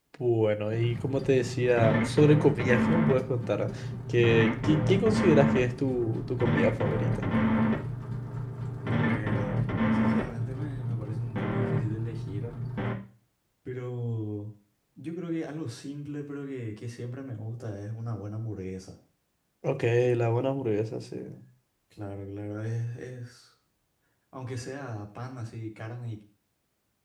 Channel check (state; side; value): identical; both; correlation 1.00